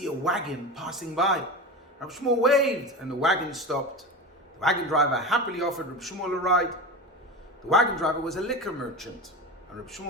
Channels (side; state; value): both; normal; correlation 0.26